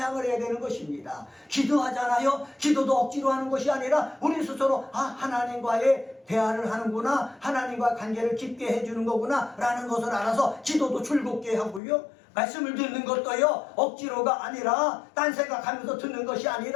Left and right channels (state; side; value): drops out; right; at 11.8 s